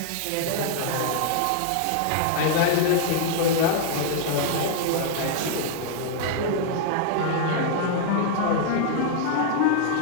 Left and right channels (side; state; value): both; different; correlation 0.00